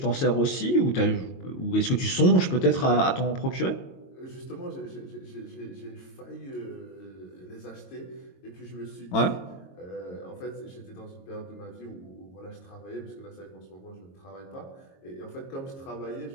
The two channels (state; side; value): late; right; 22 ms